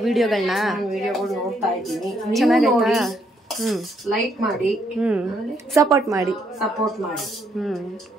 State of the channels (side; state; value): both; normal; correlation 0.73